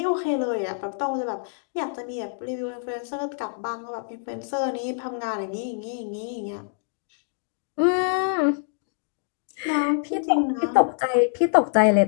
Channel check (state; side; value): silent; right; digital silence